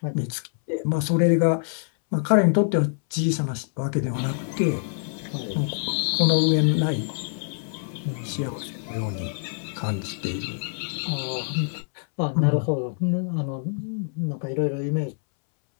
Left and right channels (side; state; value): right; silent; 62 dB below the other